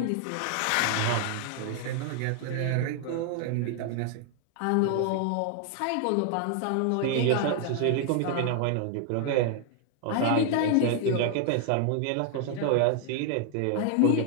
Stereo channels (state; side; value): different; both; correlation 0.00